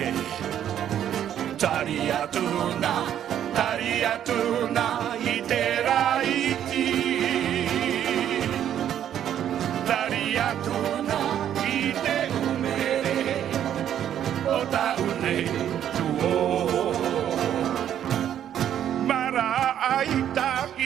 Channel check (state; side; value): quieter; left; 10.3 dB